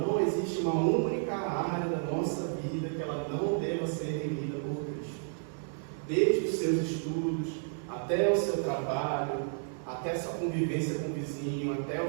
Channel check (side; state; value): left; silent; digital silence